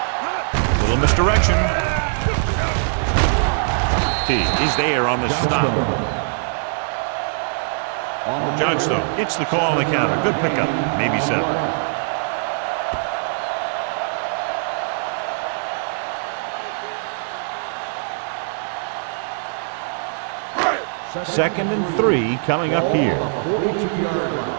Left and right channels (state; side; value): silent; left; 63 dB below the other